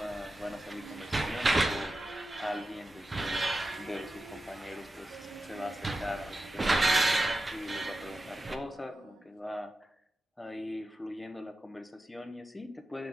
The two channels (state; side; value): normal; both; correlation 0.93